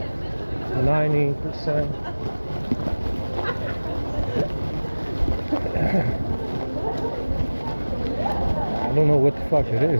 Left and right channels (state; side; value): inverted; both; correlation -1.00